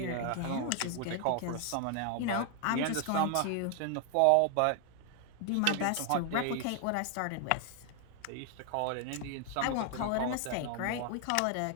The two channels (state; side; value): different; both; correlation 0.00